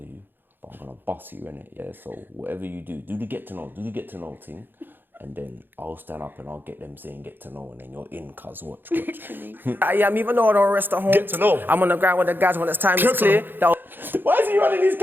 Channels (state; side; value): late; left; 0.096 ms